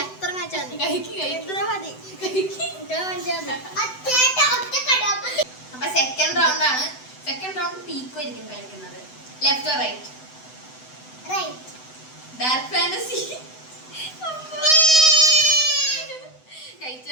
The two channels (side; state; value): right; late; 7.9 ms